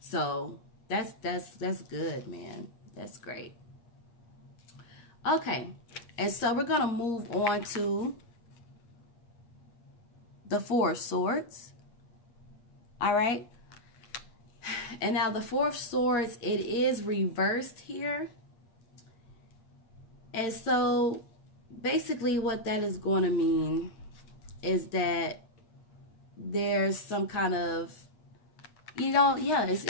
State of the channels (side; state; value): right; late; 8.4 ms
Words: that's good, man. That's great. Okay. And so we're going to move on to the Four of Swords. All right. And now the Four of Swords, it is reversed here. And so basically what that is going to mean is that there's some kind of, you know, yeah, it's